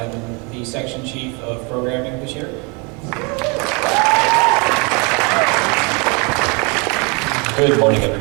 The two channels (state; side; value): quieter; left; 31.1 dB